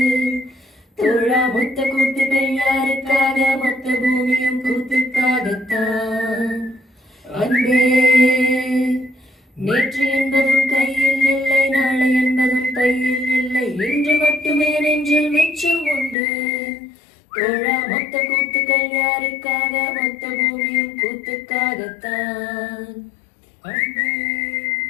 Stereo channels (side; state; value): right; drops out; at 16.2 s